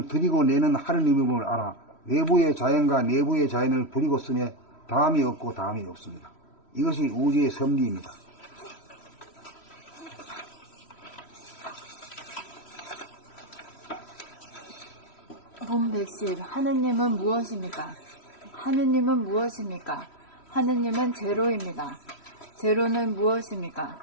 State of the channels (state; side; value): late; right; 3.1 ms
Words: 들이고 내는 하느님임을 알아 외부의 자연과 내부의 자연을 부리고 쓰며 다함이 없고 다함이 없습니다. 이것이 우주의 섭리입니다. 봄 백십, 하느님은 무엇입니까? 하느님은 무엇입니까? 하느님은 제로입니다. 제로는 무엇입니까?